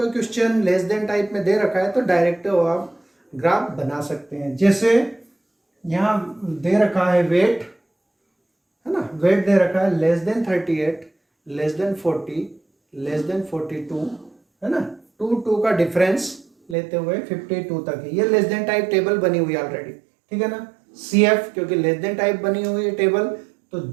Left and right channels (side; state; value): left; drops out; at 16.8 s